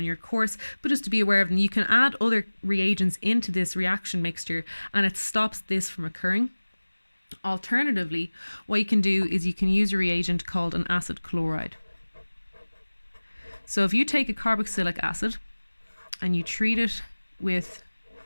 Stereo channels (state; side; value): inverted; both; correlation -1.00